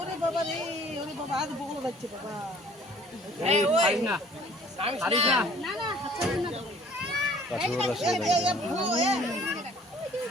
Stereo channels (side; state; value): both; normal; correlation 0.54